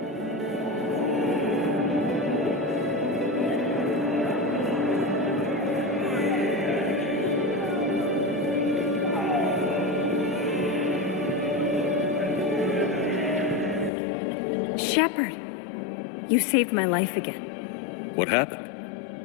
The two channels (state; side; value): drops out; right; at 13.9 s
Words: Shepard! You saved my life again. What